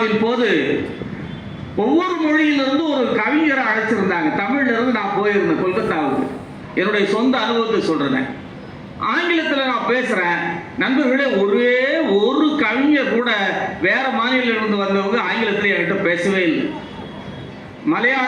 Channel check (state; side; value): identical; both; correlation 1.00